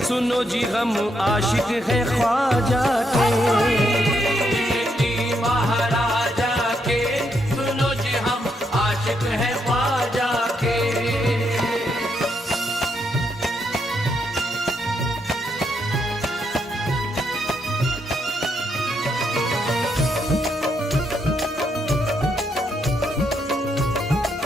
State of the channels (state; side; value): normal; both; correlation 0.78